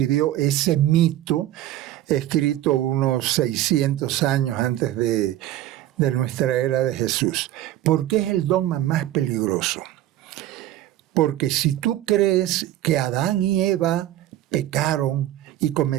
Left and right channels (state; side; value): quieter; left; 13.5 dB